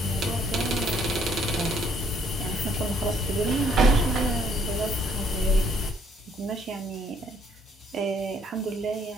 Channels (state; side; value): normal; both; correlation 0.65